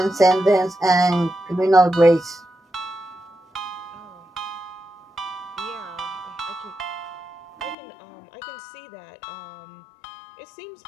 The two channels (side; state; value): right; drops out; at 7.8 s